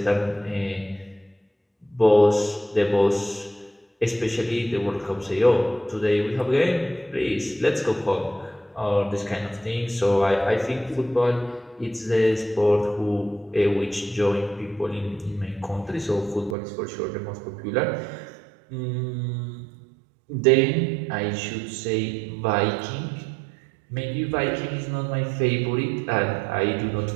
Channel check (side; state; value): left; drops out; at 16.6 s